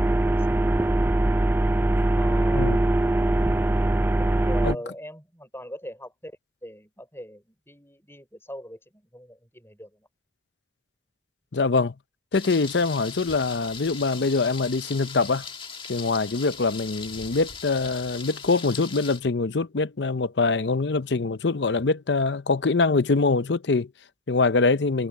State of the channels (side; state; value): both; normal; correlation 0.33